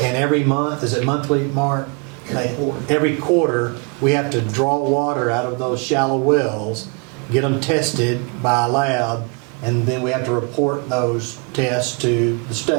every month, is it monthly, Mark? Every quarter, we have to draw water out of those shallow wells, get them tested by a lab, and then we have to report those tests to the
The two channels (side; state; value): left; quieter; 31.5 dB